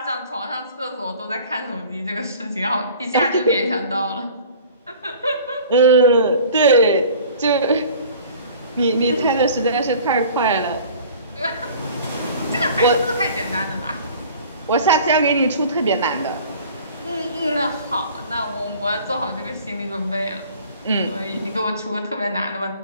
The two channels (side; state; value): both; inverted; correlation -0.47